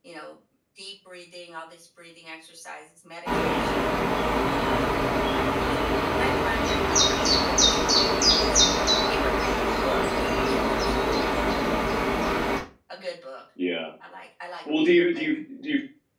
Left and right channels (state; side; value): identical; both; correlation 1.00